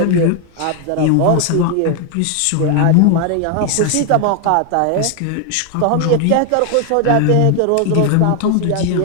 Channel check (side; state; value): both; different; correlation 0.01